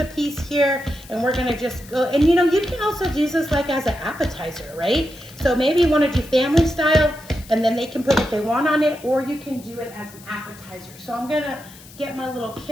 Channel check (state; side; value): noise; left; hiss, 21 dB below the sound